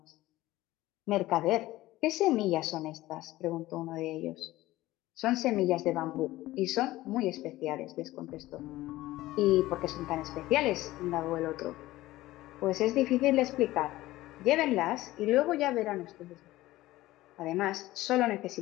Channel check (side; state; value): right; quieter; 17.1 dB